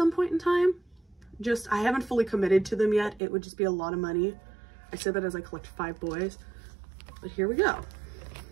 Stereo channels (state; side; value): drops out; left; at 3.2 s